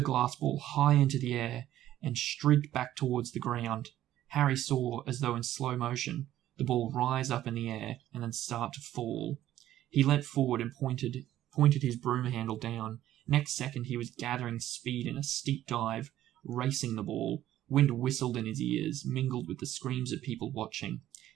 glass ball high into the air and streaked back towards the ground. Harry saw, as though in slow motion, the ball rise up in the air and then start to fall. He leant forward and pointed his broom handle down. Next second he was gathering speed in a steep dive, racing the ball. Wind whistled in his ears, mingled with the screams of people watching.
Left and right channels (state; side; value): quieter; left; 13.0 dB